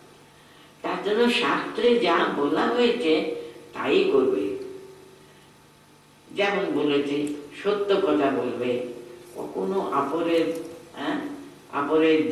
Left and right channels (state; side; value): identical; both; correlation 1.00